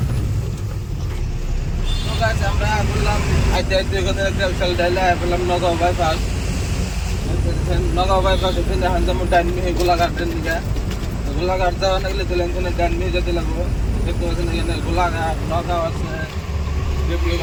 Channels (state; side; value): identical; both; correlation 1.00